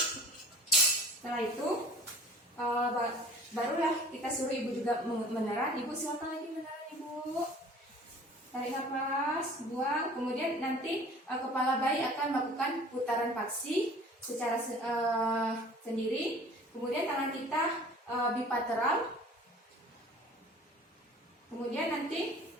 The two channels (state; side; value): normal; both; correlation 0.46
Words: itu barulah kita suruh ibu juga meneran. Ibu silakan lagi meneran ibu. Tarik nafas, buang. Kemudian nanti kepala bayi akan melakukan putaran paksi secara sendiri. Kemudian tangan kita bilateral. Kemudian nanti